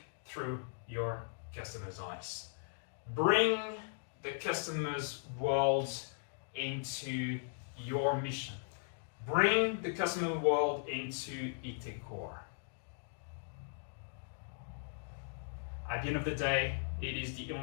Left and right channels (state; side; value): silent; right; digital silence